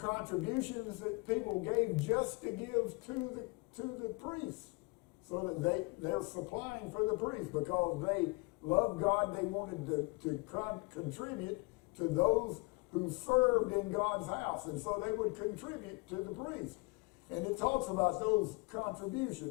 that people gave just to give to the priests, so that they're supplying for the priests because they loved God. They wanted to contribute to those who served in God's house, and so they would contribute to the priest. And it talks about those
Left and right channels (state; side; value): quieter; right; 27.8 dB